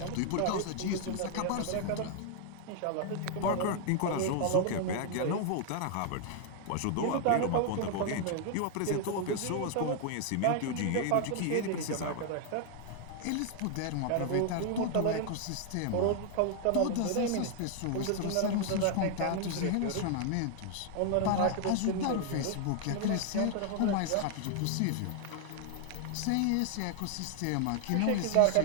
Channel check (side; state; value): both; different; correlation 0.00